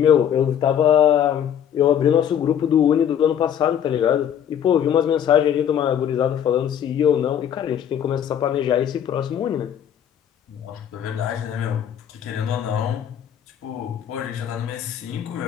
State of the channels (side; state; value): right; quieter; 9.3 dB